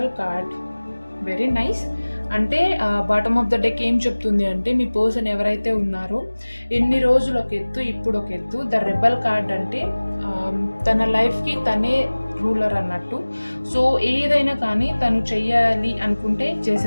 card, very nice. అంటే బాటమ్ ఆఫ్ ద డెక్ ఏం చెప్తుంది అంటే, మీ పర్సన్ ఎవరైతే ఉన్నారో ఎన్ని రోజులు ఒక ఎత్తు, ఇప్పుడు ఒక ఎత్తు. ద రెబల్ కార్డ్ అంటే తన లైఫ్కి తనే రూలర్ అన్నట్టు. సో ఏదైనా కానీ తను చెయ్యాలి అనుకుంటే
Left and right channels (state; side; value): inverted; both; correlation -1.00